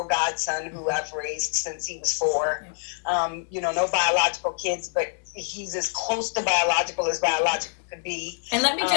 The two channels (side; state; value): right; silent; 61 dB below the other